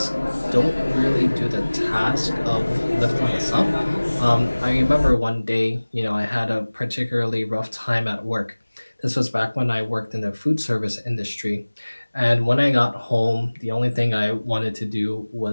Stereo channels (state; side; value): inverted; both; correlation -1.00